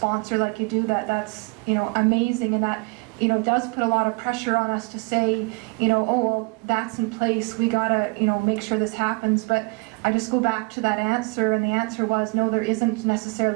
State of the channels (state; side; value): quieter; left; 29.0 dB